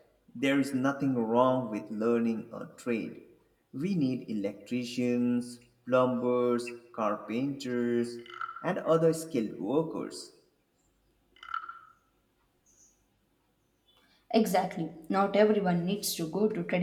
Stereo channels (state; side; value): identical; both; correlation 1.00